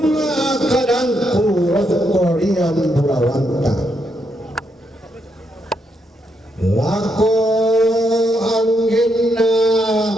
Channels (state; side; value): normal; both; correlation 0.79